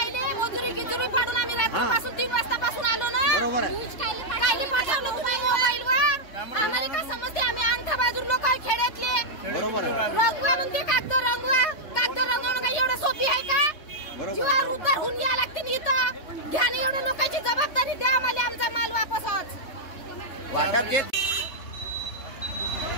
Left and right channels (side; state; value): right; late; 3.3 ms